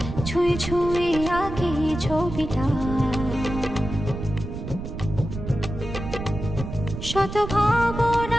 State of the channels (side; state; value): right; noise; rumble, 7 dB below the sound